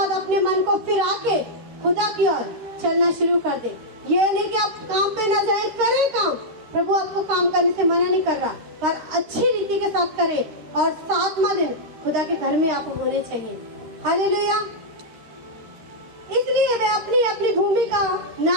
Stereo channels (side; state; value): left; late; 13 ms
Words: अपने मन को फिरा के खुदा की ओर चलना शुरू कर दे। ये नहीं कि आप काम पे न जाए, करें काम, प्रभु आपको काम करने से मना नहीं कर रहा, पर अच्छी रीति के साथ करें और 7वां दिन खुदा के घर में आप होने चाहिए। हालेलुया। इसलिए वे अपनी अपनी भूमि का